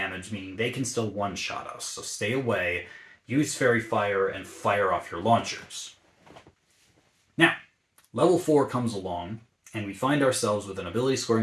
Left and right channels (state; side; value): identical; both; correlation 1.00